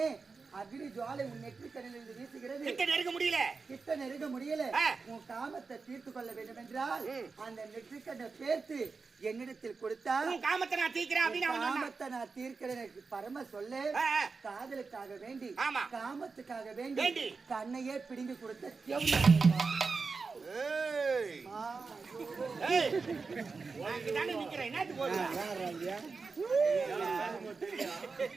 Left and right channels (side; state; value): left; quieter; 4.5 dB